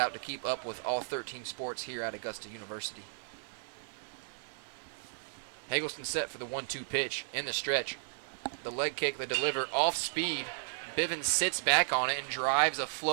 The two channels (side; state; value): left; silent; 55 dB below the other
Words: to keep up with all 13 sports here at Augusta University. Hagelston set for the 1-2 pitch in the stretch. The leg kick, the deliver off speed. Bivens sits back on it and drives a